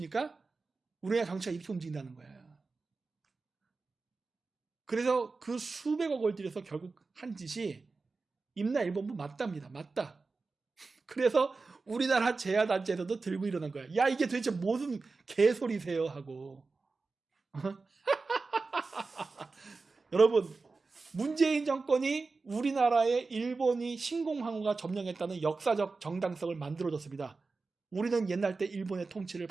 우리나라 정치가 이렇게 움직인다는 거예요. 그래서 그 수백억을 들여서 결국 한 짓이 임나 일본부 맞답니다. 맞다. 그래서 우리나라 재야단체에서도 들고 일어난 거야. 야, 이게 도대체 무슨 개소리세요 하고. 여러분, 문재인 정권이 우리나라의 일본이 신공항우가 점령했다는 역사적 정당성을 만들어줬습니다. 우리는 옛날 때 일본의 통치를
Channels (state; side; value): quieter; left; 4.0 dB